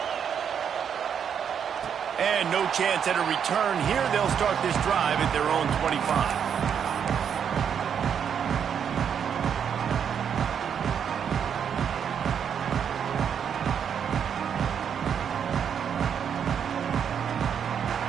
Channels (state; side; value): quieter; left; 7.8 dB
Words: And no chance at a return here. They'll start this drive at their own 25.